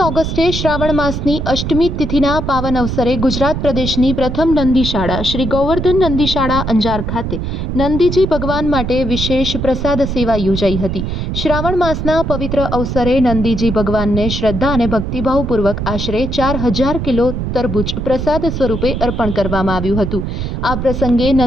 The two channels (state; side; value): noise; right; rumble, 3 dB below the sound